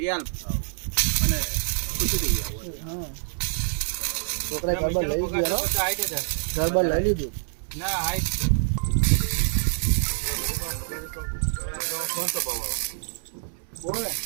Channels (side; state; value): left; silent; 61 dB below the other